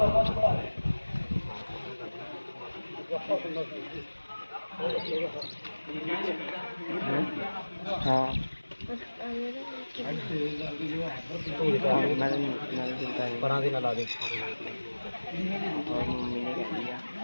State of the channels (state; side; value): inverted; both; correlation -1.00